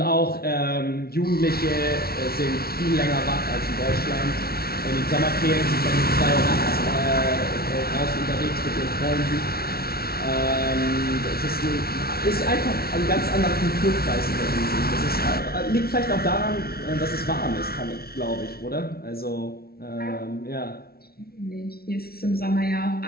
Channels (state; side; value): late; right; 0.44 ms